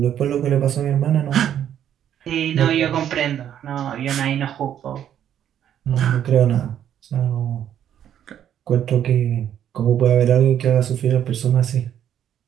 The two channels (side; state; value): left; quieter; 10.1 dB